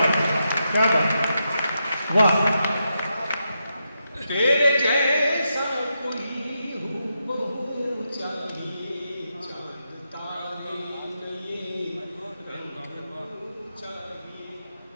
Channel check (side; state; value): both; inverted; correlation -0.84